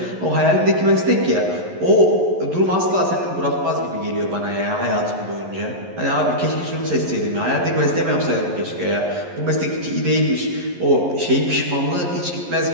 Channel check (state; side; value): late; left; 11 ms